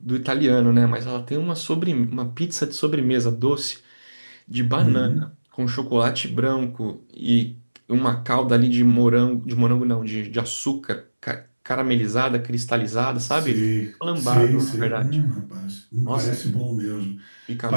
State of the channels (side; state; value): both; inverted; correlation -1.00